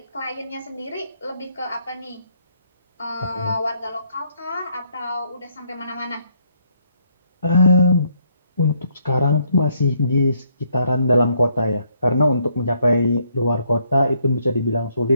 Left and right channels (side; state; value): both; inverted; correlation -0.70